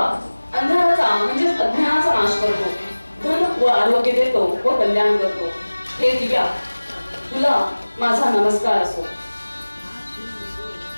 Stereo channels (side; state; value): both; inverted; correlation -1.00